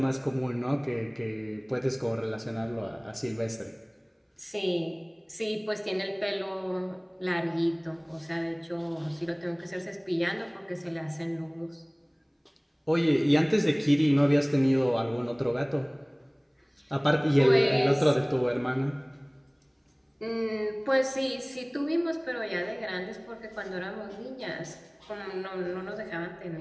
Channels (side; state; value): both; identical; correlation 1.00